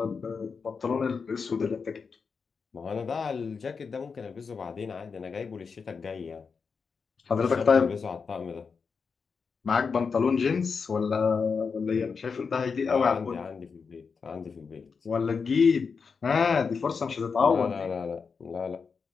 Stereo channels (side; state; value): right; quieter; 5.4 dB